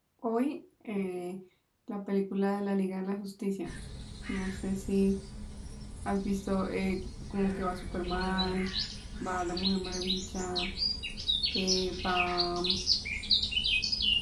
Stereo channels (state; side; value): identical; both; correlation 1.00